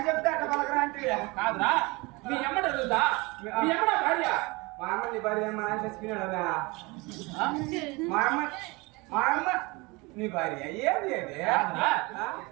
చెప్తే అట్లా పలకరా అంటే కాదురా మీ అమ్మట అడుగుతా మీ అమ్మట భార్య మా అమ్మ నీ భార్య మా ఆయన చచ్చిపోయినాడా మా అమ్మ నీ భార్య ఏంది అది కాదురా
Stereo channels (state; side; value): quieter; left; 25.3 dB